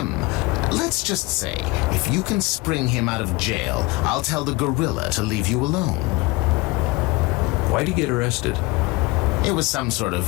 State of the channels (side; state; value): right; quieter; 23.2 dB